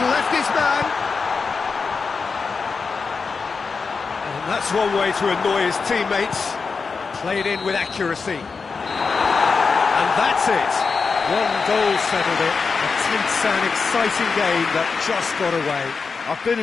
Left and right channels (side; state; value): right; quieter; 4.9 dB